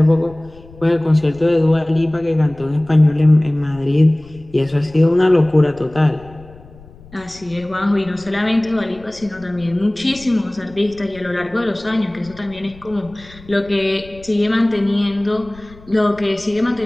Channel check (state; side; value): noise; left; rumble, 22 dB below the sound